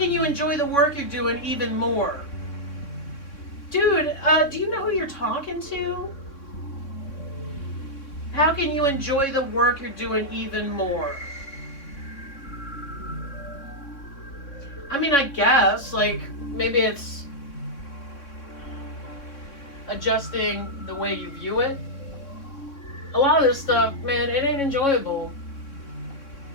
you enjoy the work you're doing even more? Dude, do you know who you're talking to? How can you enjoy the work you're doing even more? I mean, I guess, like, maybe it's adjusting the way you view it. A lot of this stuff, man, it ain't enjoyable.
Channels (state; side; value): late; right; 3.6 ms